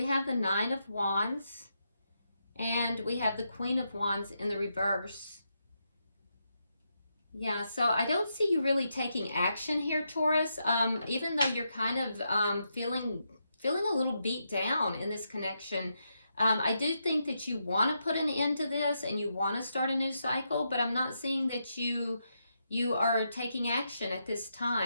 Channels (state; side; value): inverted; both; correlation -0.83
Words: have the Nine of Wands, and we have the Queen of Wands in the reverse. Yeah, so I don't see you really taking action here, Taurus, even though you're kind of feeling a little beat down in this connection. I do think that you want to put an end to this and you want to start a new cycle, but I'm not seeing that you are taking action at this